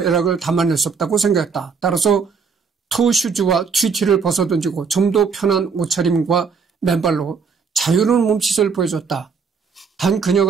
담아낼 수 없다고 생각했다. 따라서 토슈즈와 튀티를 벗어던지고 좀 더 편한 옷차림과 맨발로 자유로운 몸짓을 보여줬다. 단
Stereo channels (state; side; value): quieter; left; 5.6 dB